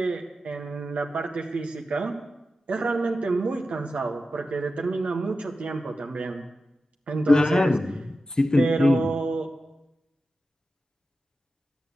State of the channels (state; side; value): normal; both; correlation 0.92